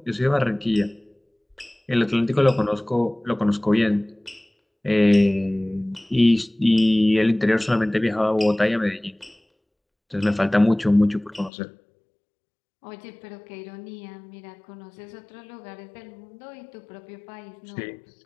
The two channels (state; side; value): drops out; right; at 11.5 s